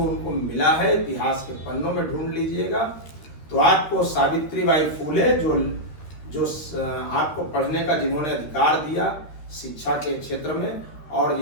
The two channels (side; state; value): right; late; 13 ms